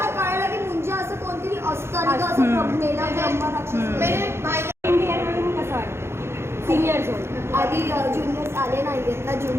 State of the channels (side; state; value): left; late; 0.12 ms